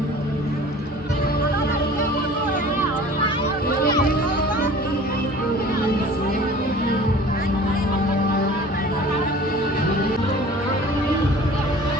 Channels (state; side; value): normal; both; correlation 0.44